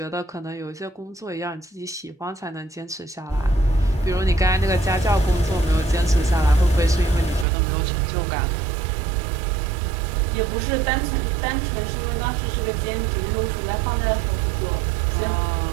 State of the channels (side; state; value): left; drops out; at 7.5 s